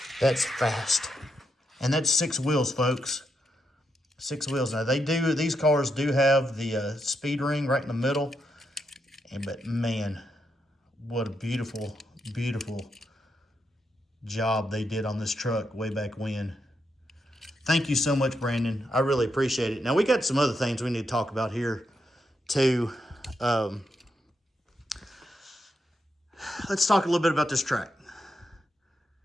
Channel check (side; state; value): both; normal; correlation 0.82